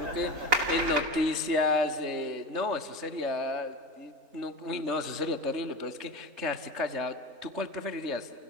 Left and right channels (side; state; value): left; late; 4.0 ms